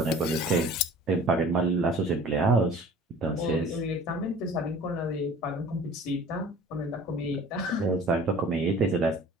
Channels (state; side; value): normal; both; correlation 0.46